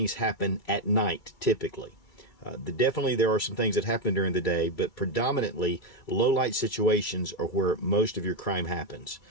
happen at night typically. Definitely there are some things that happen during the day, but predominantly low light situations are where most of your crime happens.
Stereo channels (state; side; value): late; right; 2.3 ms